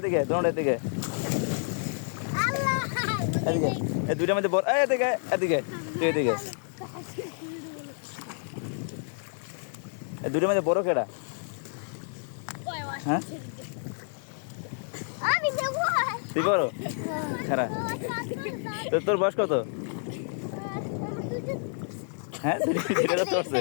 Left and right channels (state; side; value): silent; right; 59 dB below the other